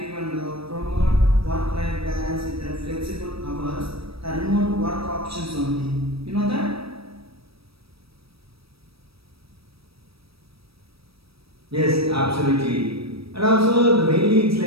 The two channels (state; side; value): late; left; 0.77 ms